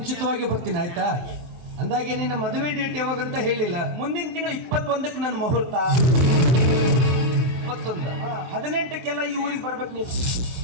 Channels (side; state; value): left; late; 23 ms